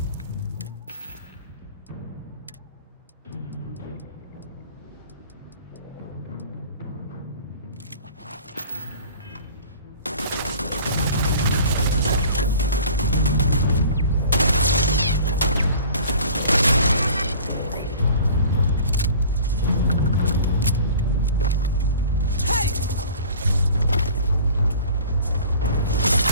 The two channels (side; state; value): both; inverted; correlation -0.45